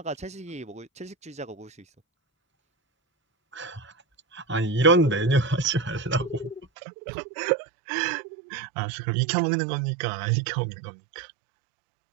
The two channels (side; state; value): left; drops out; at 6.7 s